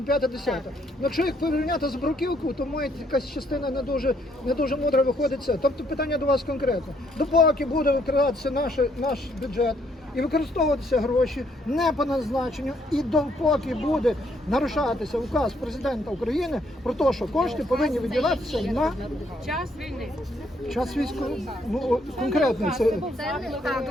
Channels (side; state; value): both; normal; correlation 0.70